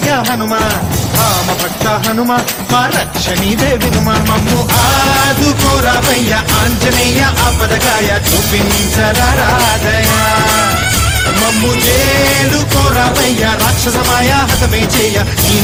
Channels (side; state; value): both; identical; correlation 1.00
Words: హనుమా రామ భక్త హనుమా మా రక్షణీదే వినుమా మమ్ము ఆదుకోరావయ్యా ఆంజనేయ ఆపదకాయ చూపించరాదయా మమ్ము చేడు కోరావయ్యా రాక్షసమాయ హతమే చేయ ఈ